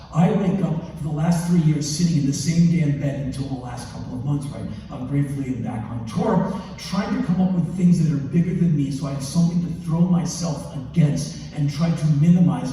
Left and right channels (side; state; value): both; identical; correlation 1.00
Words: I wake up for the last 3 years sitting in the same damn bed until the last couple of months, right? I'm gratefully back on tour, trying to come up with things that are bigger than me so I have something to throw myself against and try to minimize